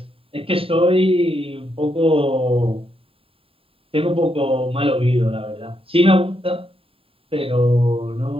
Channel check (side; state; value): left; late; 0.27 ms